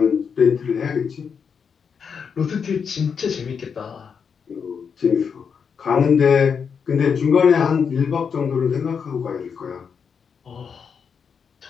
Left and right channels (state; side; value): quieter; right; 6.5 dB